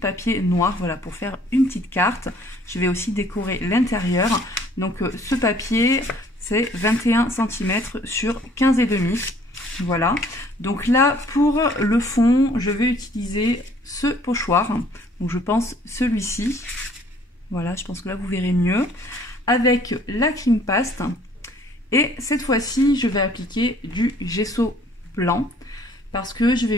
noir, voilà, pour faire une petite carte. Je vais aussi décorer l'intérieur. Donc ce papier, c'est 21 cm sur 15,5. Voilà. Donc là, pour le fond, je vais utiliser ce pochoir. Donc je pense celui-ci. Voilà, je pense que là, vous verrez mieux. Avec la Clean Paste. Et cette fois-ci, je vais appliquer du gesso blanc, parce que je vais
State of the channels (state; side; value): normal; both; correlation 0.58